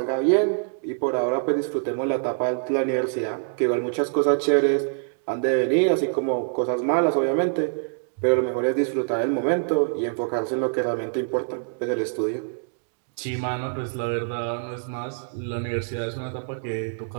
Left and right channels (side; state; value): left; silent; digital silence